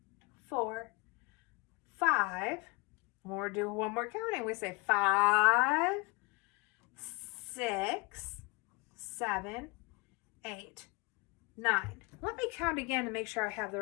4, 5. We'll do one more counting. We say 5, 6, 7, 8, 9. Let me count again to make sure I have the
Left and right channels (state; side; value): quieter; right; 26.4 dB